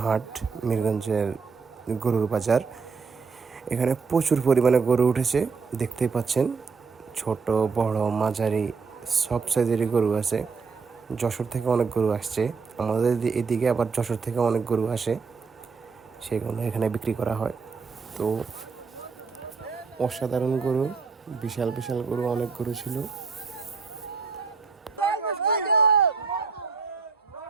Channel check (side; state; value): left; quieter; 5.0 dB